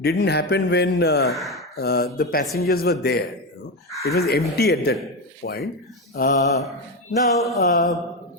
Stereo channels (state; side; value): normal; both; correlation 0.14